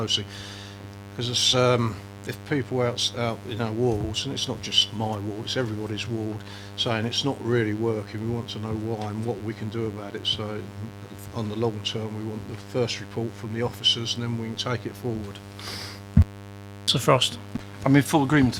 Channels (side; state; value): both; identical; correlation 1.00